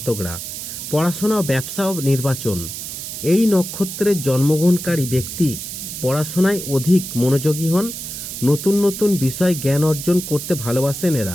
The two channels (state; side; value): noise; right; hiss, 8 dB below the sound